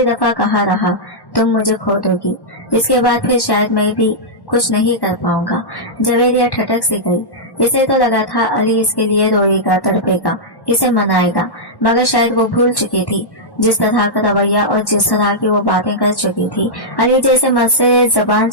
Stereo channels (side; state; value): right; late; 1.1 ms